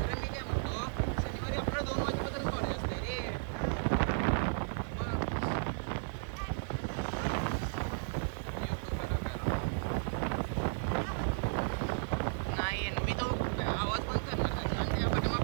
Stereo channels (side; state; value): left; silent; digital silence